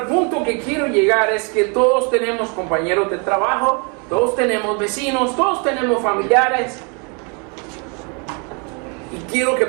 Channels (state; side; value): quieter; left; 34.7 dB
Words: punto que quiero llegar es que todos tenemos compañeros de trabajo, todos tenemos vecinos, todos tenemos familiares. Y quiero que